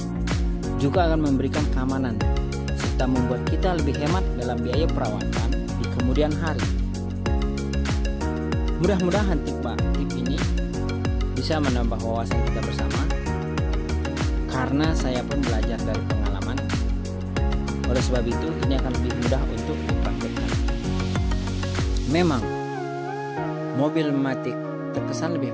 juga akan memberikan keamanan serta membuat kita lebih hemat dalam biaya perawatan di kemudian hari. Mudah-mudahan tip ini bisa menambah wawasan kita bersama, karena saya pun belajar dari pengalaman. Oleh sebab itu, ini akan lebih mudah untuk dipraktikkan. Memang mobil Matic terkesan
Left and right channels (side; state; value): both; identical; correlation 1.00